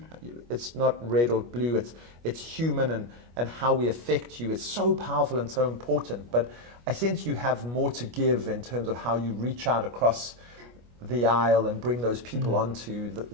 it's not red or blue, it's human, and how we affect you is so powerful and so important. But I sense you have more to give in terms of how you reach out across the aisle and bring those people onto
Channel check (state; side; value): late; left; 25 ms